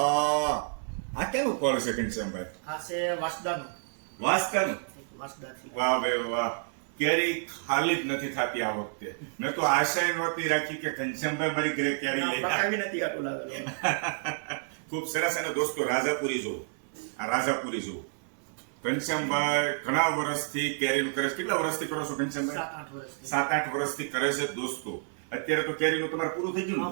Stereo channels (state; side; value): silent; left; 58 dB below the other